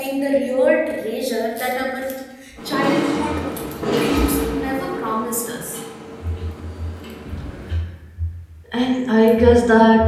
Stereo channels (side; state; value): both; identical; correlation 1.00